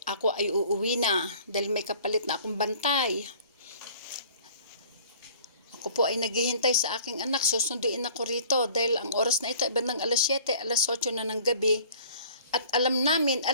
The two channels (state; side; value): inverted; both; correlation -0.50